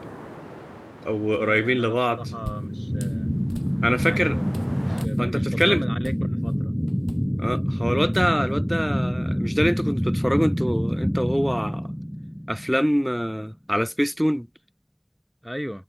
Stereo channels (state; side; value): identical; both; correlation 1.00